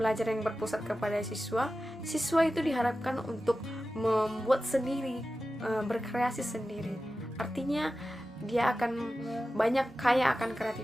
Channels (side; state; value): both; normal; correlation 0.94